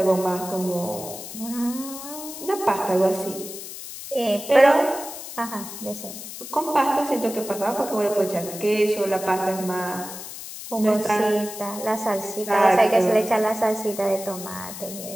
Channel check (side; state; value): left; noise; hiss, 11 dB below the sound